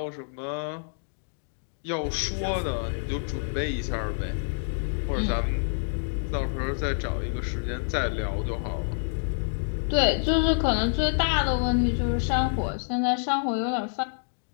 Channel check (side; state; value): right; silent; digital silence